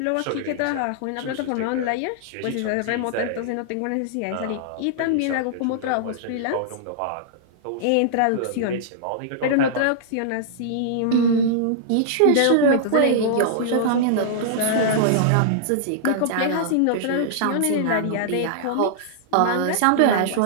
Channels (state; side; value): different; both; correlation -0.02